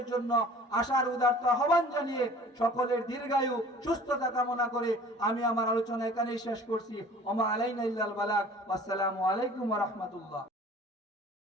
জন্য আশার উদারতা আহ্বান জানিয়ে সকলের দীর্ঘায়ু, সুস্থতা কামনা করে আমি আমার আলোচনা এখানেই শেষ করছি। ওমা আলাইনা ইল্লাল বালাগ। আসসালামু আলাইকুম ওয়া রাহমাতুল্লাহ।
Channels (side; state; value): both; normal; correlation 0.47